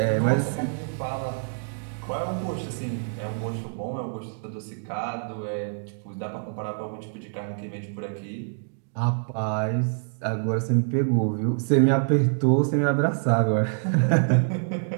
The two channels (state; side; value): silent; left; digital silence